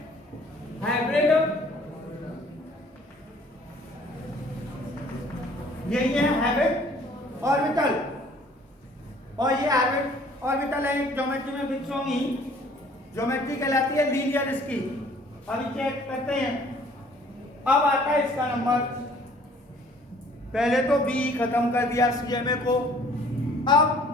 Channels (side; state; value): both; normal; correlation 0.56